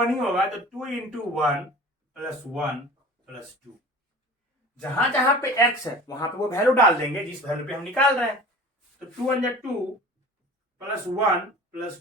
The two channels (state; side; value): normal; both; correlation 0.40